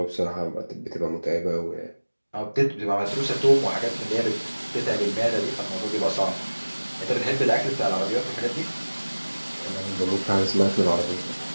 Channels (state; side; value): inverted; both; correlation -1.00